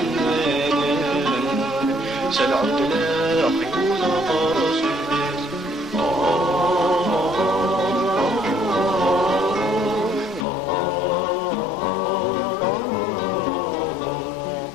سلعود لا خيوط قرص ناس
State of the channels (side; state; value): right; drops out; at 10.5 s